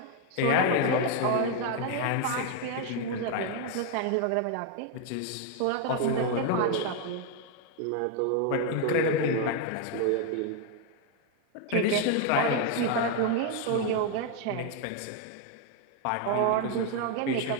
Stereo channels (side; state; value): both; different; correlation 0.01